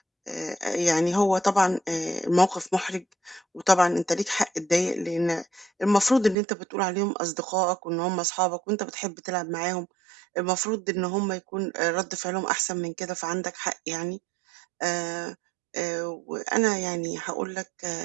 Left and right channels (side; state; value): left; drops out; at 6.4 s